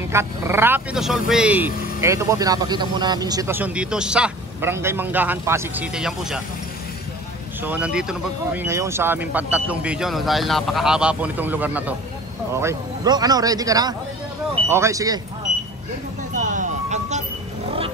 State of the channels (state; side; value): normal; both; correlation 0.42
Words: Rapido Survey. Ito po, pinapakita muna namin yung sitwasyon dito sa Barangay Manggahan, Pasig City. Yan po siya. So nandito na po kami ngayon sa aming pantatlong video dahil napakahaba po nitong lugar na to. Okay. Bro, ready ka na? Okay, sige. Uncut